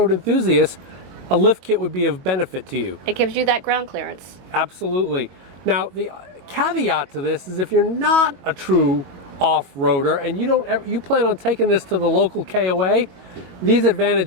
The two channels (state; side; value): late; left; 22 ms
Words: enthusiast, a lift kit would be of benefit to you. It gives you that ground clearance. Absolutely. Now, the caveat to this is if you're not a true off-roader and you plan on taking this to the local KOA, these